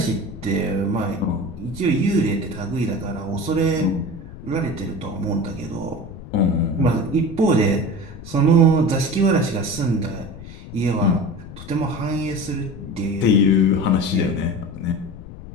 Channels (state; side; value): noise; left; rumble, 14 dB below the sound